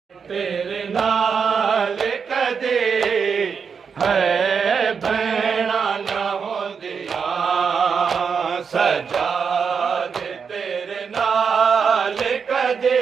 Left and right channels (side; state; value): left; quieter; 6.1 dB